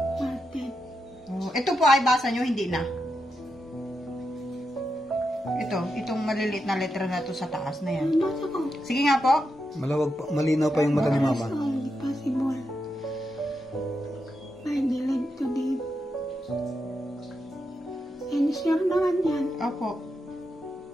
Market. Ito po ay basa nyo, hindi na. Itong maliliit na letra na to sa taas na yan. Basa ko. Sige nga po. Malawag pa, malinaw pa yung mata ni Mama. Possible. I believe to live. And sure naman yan. Opo.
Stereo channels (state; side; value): normal; both; correlation 0.85